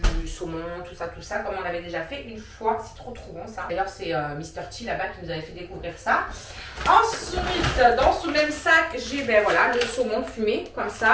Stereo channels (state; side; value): identical; both; correlation 1.00